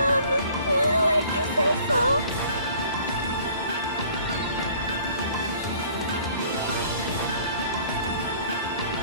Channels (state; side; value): inverted; both; correlation -0.54